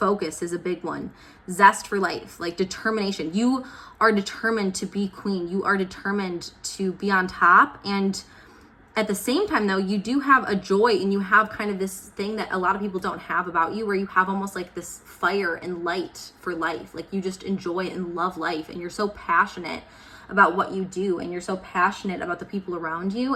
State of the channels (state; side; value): identical; both; correlation 1.00